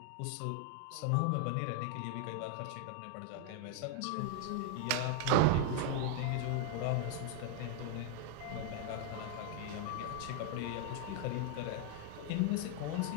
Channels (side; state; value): both; different; correlation 0.00